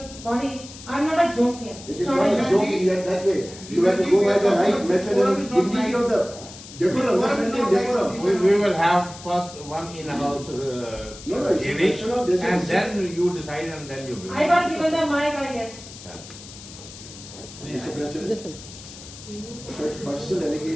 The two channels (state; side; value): noise; left; hiss, 16 dB below the sound